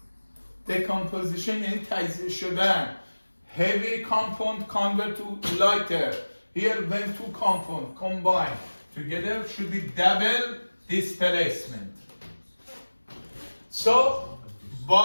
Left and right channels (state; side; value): inverted; both; correlation -1.00